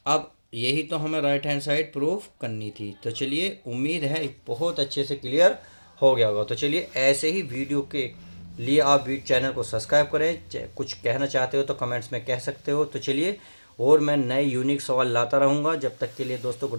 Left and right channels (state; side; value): inverted; both; correlation -1.00